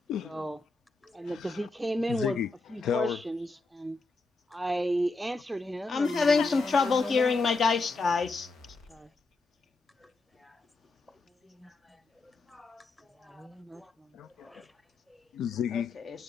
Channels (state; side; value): quieter; right; 3.5 dB